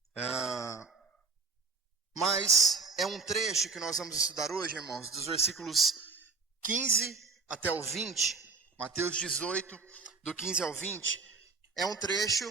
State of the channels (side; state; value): left; quieter; 4.4 dB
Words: mas é um trecho que nós vamos estudar hoje, irmãos, dos versículos 15 até o 20, Mateus 18, do 15 ao 20, é um